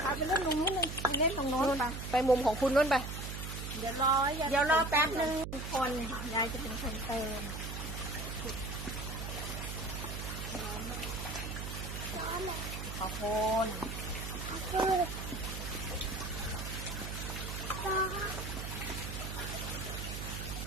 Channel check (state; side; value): noise; right; hum, 6 dB below the sound